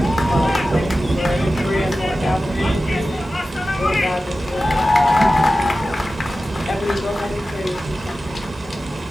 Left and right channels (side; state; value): both; normal; correlation 0.94